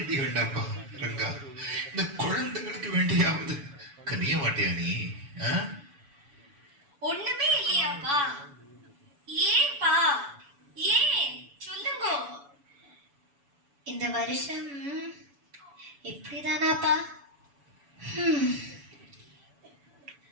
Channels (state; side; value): late; left; 7.0 ms